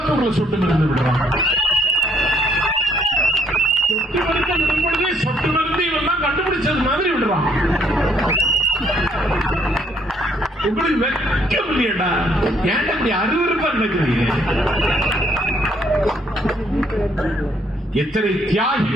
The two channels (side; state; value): both; normal; correlation 0.68